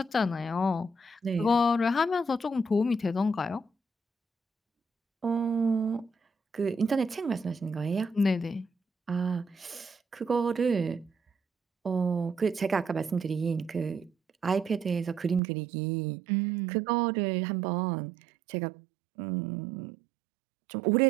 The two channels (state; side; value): drops out; left; at 15.4 s